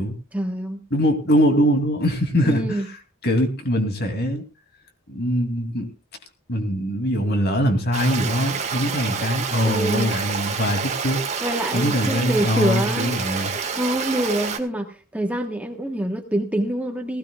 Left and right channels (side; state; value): both; normal; correlation 0.59